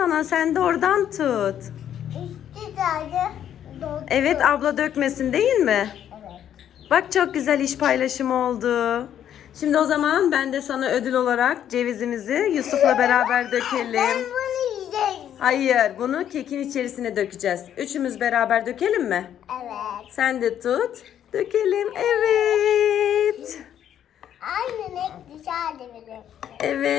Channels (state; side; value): quieter; right; 10.1 dB